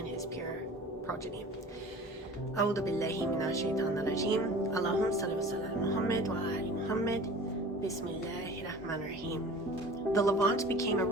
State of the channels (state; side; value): normal; both; correlation 0.42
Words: his pure progeny. أعوذ بالله من الشيطان الرجيم. اللهم صل وسلم على محمد وعلى محمد. بسم الله الرحمن الرحيم. The Levant became a